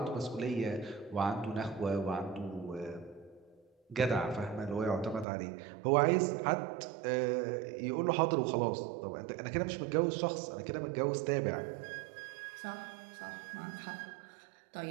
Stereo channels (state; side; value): drops out; left; at 5.2 s